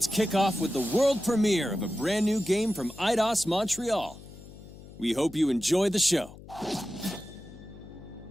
kick off with the world premiere of a brand new game from Eidos Montreal. We hope you enjoy the show.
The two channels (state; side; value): noise; left; hum, 17 dB below the sound